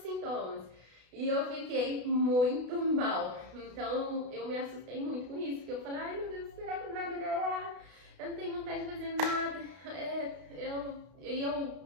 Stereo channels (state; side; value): late; left; 32 ms